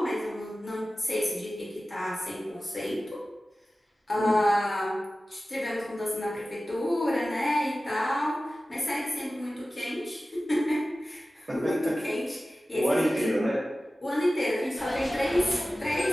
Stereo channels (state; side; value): normal; both; correlation 0.96